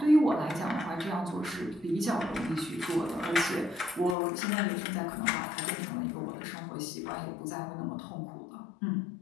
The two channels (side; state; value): right; drops out; at 4.2 s